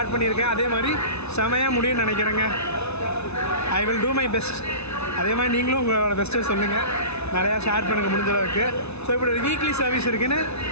பண்ணியிருக்கேன், அதே மாதிரி செமையாக முடியும்னு நினைக்கிறேங்க. I will do my best. அதே மாதிரி நீங்களும் உங்களோட பெஸ்ட்டை சொல்லுங்கள், நிறையா ஷேர் பண்ணுங்கள் முடிஞ்ச அளவுக்கு. ஸோ இப்படி ஒரு வீக்லி சர்வீஸ் இருக்குதுன்னு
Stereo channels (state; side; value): late; right; 0.81 ms